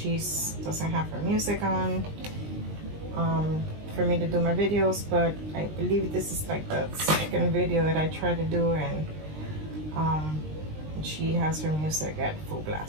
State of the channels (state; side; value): late; left; 20 ms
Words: doesn't have her music on for me to do my videos, but I believe this is like the second video that I try to do, and she has her music at full